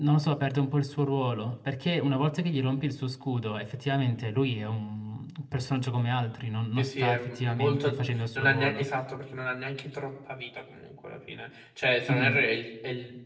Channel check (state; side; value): identical; both; correlation 1.00